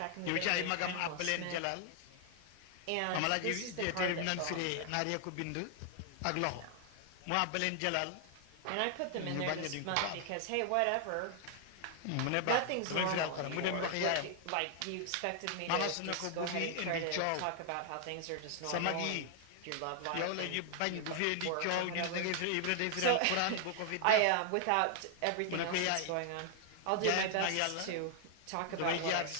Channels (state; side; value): different; both; correlation 0.00